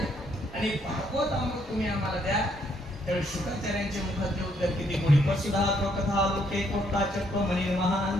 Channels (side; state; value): both; normal; correlation 0.71